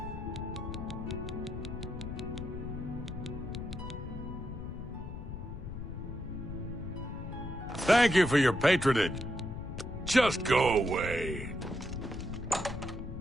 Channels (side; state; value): left; noise; rumble, 8 dB below the sound